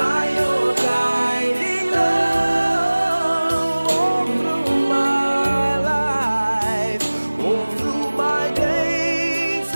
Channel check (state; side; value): inverted; both; correlation -1.00